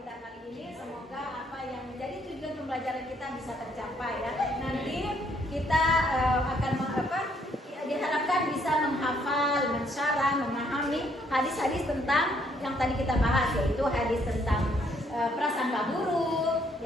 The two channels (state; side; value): normal; both; correlation 0.68